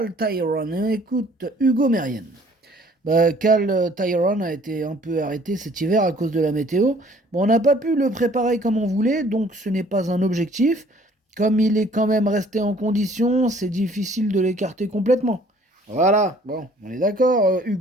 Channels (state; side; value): normal; both; correlation 0.56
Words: Tyrone, écoute Hugo Mérienne. Cal Tyrone a été un peu arrêté cet hiver à cause de la météo. Bon, on n'a pas pu le préparer comme on voulait, donc ce n'est pas un objectif. Comme il est quand même resté en condition, c'est difficile de l'écarter complètement. Voilà, bon, on est d'accord,